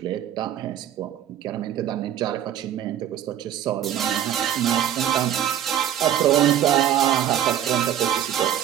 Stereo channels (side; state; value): left; quieter; 10.7 dB